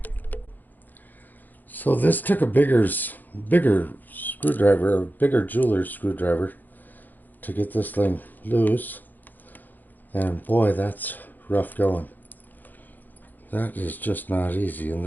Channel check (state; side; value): late; right; 0.086 ms